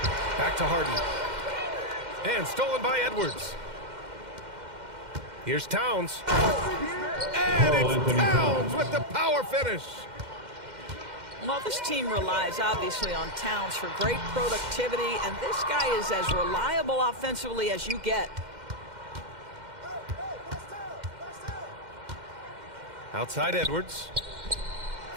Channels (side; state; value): left; late; 2.1 ms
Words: Back to Harden. And stolen by Edwards. Here's Towns. And it's Towns with the power finish. Well, this team relies obviously on Towns for great productivity, and this guy is as reliable offensively as you get. Outside Edwards.